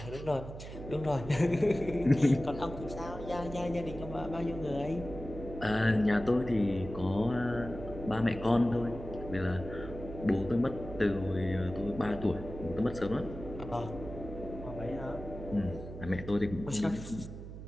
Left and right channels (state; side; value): noise; right; hum, 11 dB below the sound